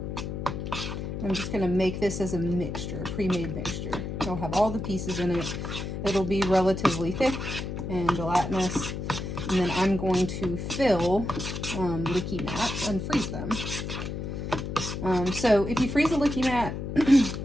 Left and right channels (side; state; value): left; noise; hum, 5 dB below the sound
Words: I'm just going to make this as a mixture, a pre-made mixture. It'll have all the pieces in it. It'll be relatively thick and gelatinous. And then I'm going to fill Likimats and freeze them. So if you freeze a Likimat,